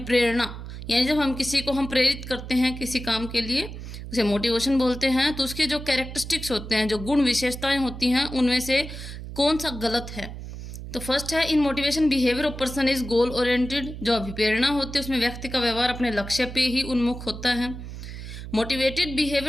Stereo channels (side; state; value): right; noise; hum, 10 dB below the sound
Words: यानी जब हम किसी को प्रेरित करते हैं किसी काम के लिए, उसे मोटिवेशन बोलते हैं। तो उसके जो कैरेक्टरिस्टिक्स होते हैं, जो गुण विशेषताएं होती हैं, उनमें से कौन सा गलत है? तो फर्स्ट है, in motivation behaviour of person is goal oriented. जो अभिप्रेरणा होती है उसमें व्यक्ति का व्यवहार अपने लक्ष्य पे ही उन्मुख होता है। Motivated